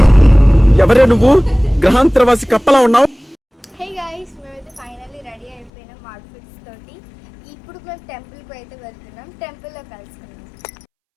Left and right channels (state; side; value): drops out; right; at 5.7 s